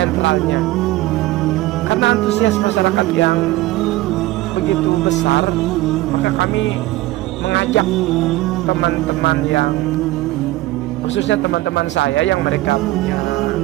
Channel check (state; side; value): quieter; left; 17.3 dB